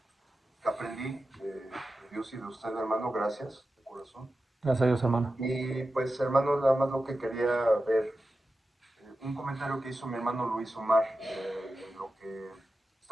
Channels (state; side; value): normal; both; correlation 0.92